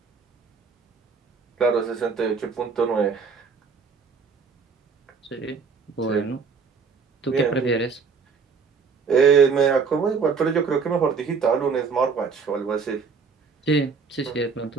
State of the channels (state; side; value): quieter; left; 5.3 dB